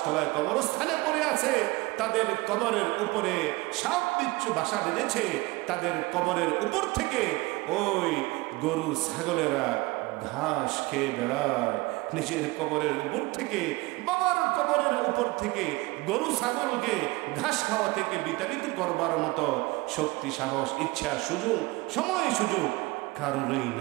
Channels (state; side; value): quieter; left; 22.7 dB